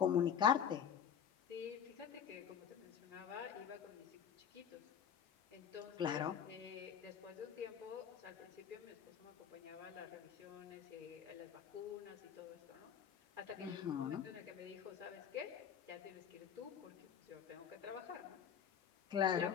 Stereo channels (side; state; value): right; quieter; 8.4 dB